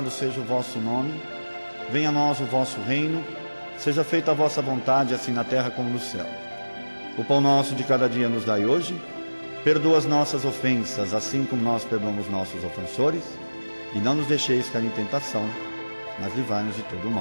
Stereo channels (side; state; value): both; inverted; correlation -1.00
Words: seja o vosso nome. Venha a nós o vosso reino. Seja feita a vossa vontade, assim na terra como no céu. O pão nosso de cada dia nos dai hoje. Perdoa as nossas ofensas, assim como nós perdoamos nossos ofensores. E não nos deixeis cair em tentação, mas livrai-nos de todo o